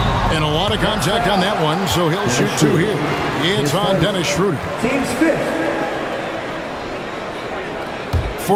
And a lot of contact on that one, so he'll shoot 2 here. It's on Dennis Schroeder. Team's fifth.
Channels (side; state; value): both; identical; correlation 1.00